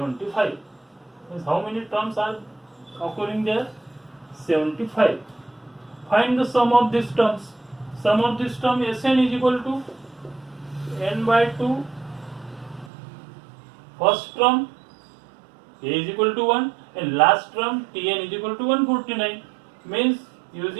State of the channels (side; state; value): left; drops out; at 12.9 s